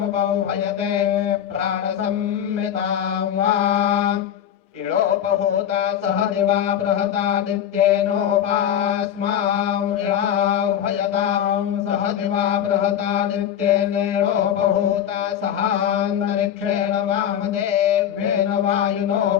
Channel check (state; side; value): quieter; right; 9.8 dB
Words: प्राणसंहितां वा इळोपहूता सह दिवा बृहतादित्येनोपास्मां इळाह्वयतां सह दिवा बृहतादित्येनेळोपहूता सहान्तरिक्षेण वामदेव्येन